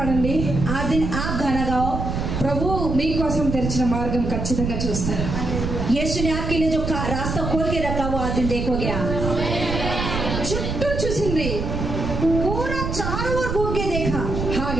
आज दिन आप गाना गाओ, ప్రభు మీకోసం తెరిచిన మార్గం ఖచ్చితంగా చూస్తారు. यीशु ने आपके लिए जो रास्ता खोल के रखा वो आज दिन देखोगे आप। చుట్టూ చూసింది पूरा चारों ओर घूम के देखा,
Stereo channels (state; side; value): noise; right; rumble, 3 dB below the sound